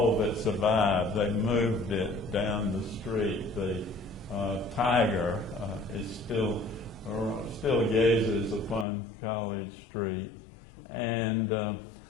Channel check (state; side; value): drops out; right; at 8.8 s